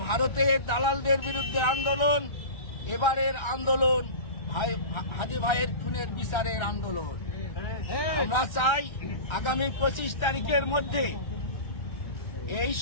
ভারতের দালালদের বিরুদ্ধে আন্দোলন, এবারের আন্দোলন হাদি ভাইয়ের খুনের বিচারের আন্দোলন। আমরা চাই আগামী 25 তারিখের মধ্যে এই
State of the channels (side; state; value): right; late; 1.3 ms